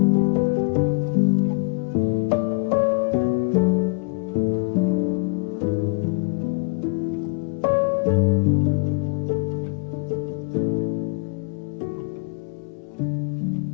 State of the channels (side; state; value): right; quieter; 32.0 dB